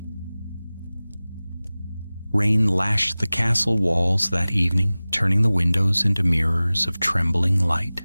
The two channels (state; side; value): inverted; both; correlation -0.98